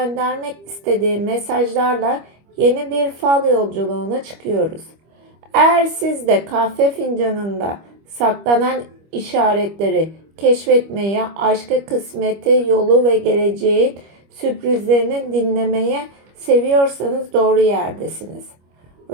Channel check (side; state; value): left; late; 25 ms